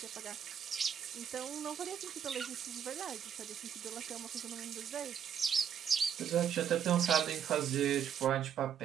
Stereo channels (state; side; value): quieter; left; 8.5 dB